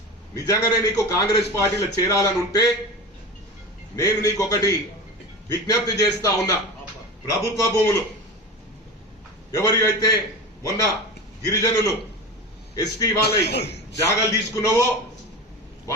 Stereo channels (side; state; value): both; normal; correlation 0.28